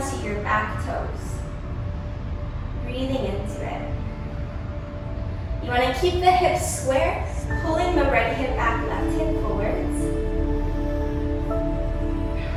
your back toes. Breathing into it. You want to keep the hips square, pulling the right hip back, left hip forwards.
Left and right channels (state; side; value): identical; both; correlation 1.00